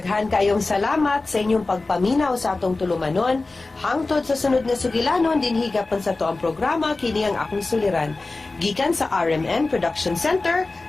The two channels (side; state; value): right; quieter; 3.4 dB